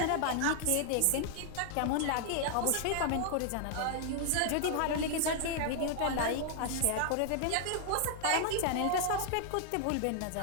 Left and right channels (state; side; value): different; both; correlation 0.00